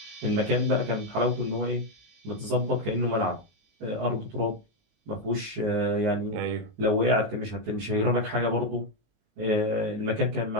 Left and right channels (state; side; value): late; left; 19 ms